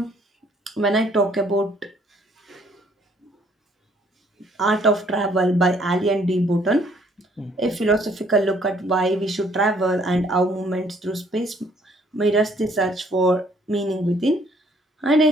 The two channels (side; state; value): both; normal; correlation 0.63